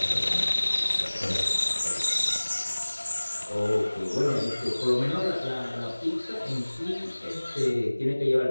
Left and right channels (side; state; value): both; inverted; correlation -1.00